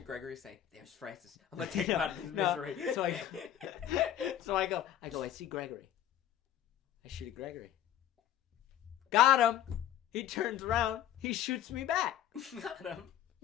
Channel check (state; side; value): quieter; right; 11.1 dB